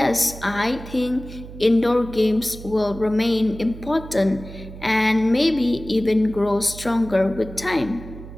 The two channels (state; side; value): noise; right; hum, 14 dB below the sound